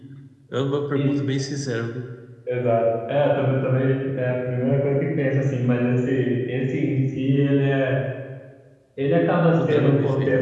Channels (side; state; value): both; identical; correlation 1.00